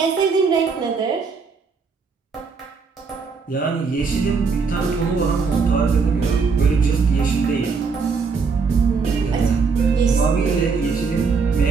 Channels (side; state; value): left; quieter; 5.0 dB